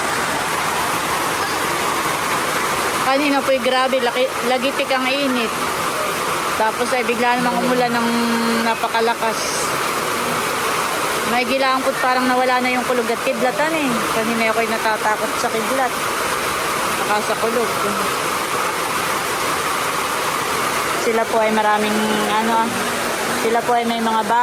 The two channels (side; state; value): both; identical; correlation 1.00